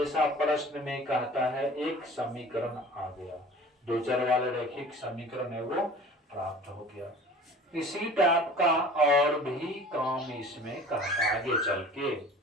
प्रश्न में कहता है। एक समीकरण आ गया, दो चर वाले रैखिक समीकरण है वो प्राप्त हो गया। इसी टाइप का और भी काम इसमें कहता है आगे चल के।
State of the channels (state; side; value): normal; both; correlation 0.43